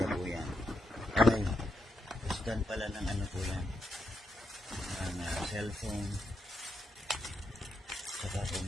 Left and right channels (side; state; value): both; normal; correlation 0.82